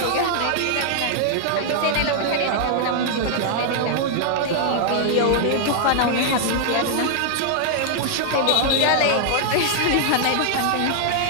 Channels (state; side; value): different; both; correlation -0.01